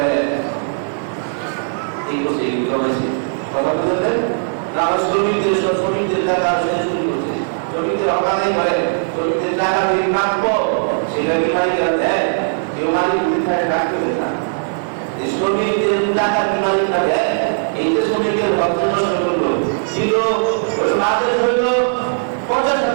এই করছে, এই জমাইছে। কথা বুঝলেন না? শ্রমিকদের টাকা চুরি করছে, শ্রমিকদের অকালে করে, শ্রমিকদের টাকা দিয়ে প্রাপ্য সেটা কি মালিকেরা দেয়? কেউ মালিক উদ্ধারে রাখতে হবে না। শ্রমিকদের টাকা কি মালিকরা দেয়? এই যে শ্রমিকের বর্তমান শ্রমিক ছিল মাসের হইল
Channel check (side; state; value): left; silent; digital silence